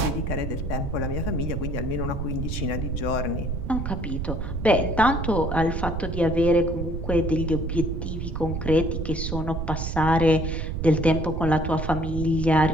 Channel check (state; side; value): noise; right; rumble, 3 dB below the sound